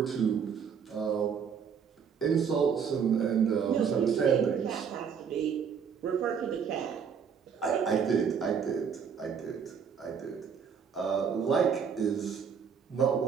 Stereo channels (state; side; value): quieter; left; 6.9 dB